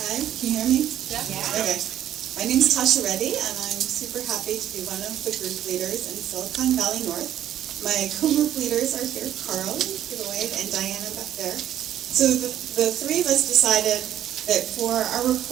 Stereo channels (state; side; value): quieter; left; 11.4 dB